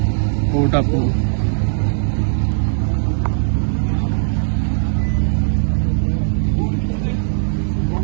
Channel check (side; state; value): left; silent; 67 dB below the other